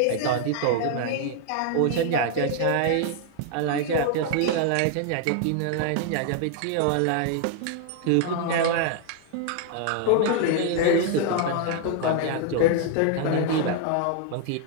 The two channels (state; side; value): different; both; correlation 0.00